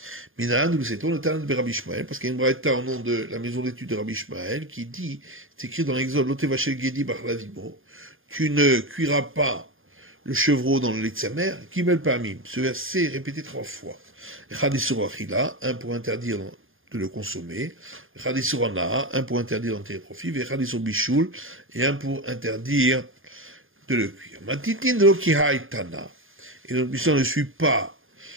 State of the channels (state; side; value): late; left; 0.59 ms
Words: Minan, nous le sait-on, le talent de Rabbi Ishmael, parce qu'il y a une braïta au nom de la maison d'études de Rabbi Ishmael, qui dit, c'est écrit dans l'Exode, Lotevachel Gedi Bachlavimo, tu ne cuiras pas le chevreau dans le lait de sa mère, Kimel Pamim. Ce verset est répété 3 fois. Echadisur Achila, un pour interdire de le consommer, Echadisur Ana, un pour interdire d'en tirer profit, Echadisur Bishul, et un pour interdire de le cuire. Matitin de l'Okihaïtana. Et notre mission ne suit pas